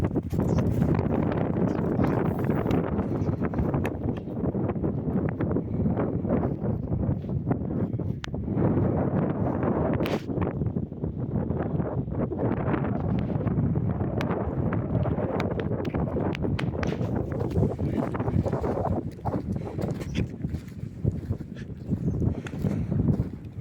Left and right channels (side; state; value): both; identical; correlation 1.00